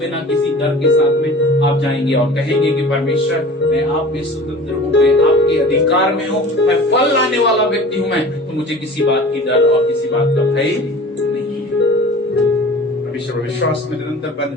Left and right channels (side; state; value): both; normal; correlation 0.41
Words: किसी डर के साथ में आप जाएंगे और कहेंगे कि परमेश्वर, मैं आप में स्वतंत्र हूँ, मैं आपके अधिकार में हूँ, मैं फल लाने वाला व्यक्ति हूँ, मैं तो मुझे किसी बात की डर और किसी बात का भय नहीं है। परमेश्वर विश्वास में निरंतर बन